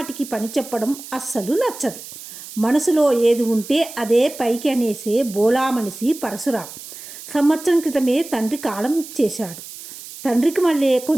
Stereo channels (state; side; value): noise; right; hiss, 14 dB below the sound